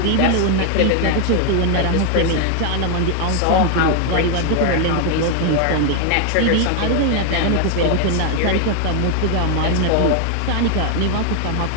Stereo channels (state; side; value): different; both; correlation 0.00